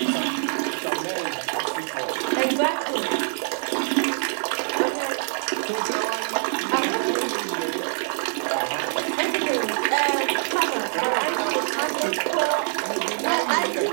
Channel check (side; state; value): left; silent; digital silence